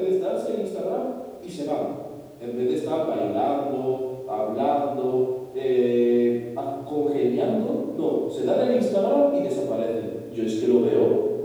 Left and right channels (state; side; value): identical; both; correlation 1.00